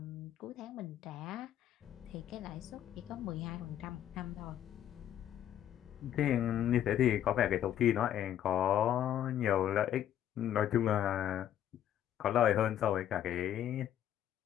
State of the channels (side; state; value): right; quieter; 11.0 dB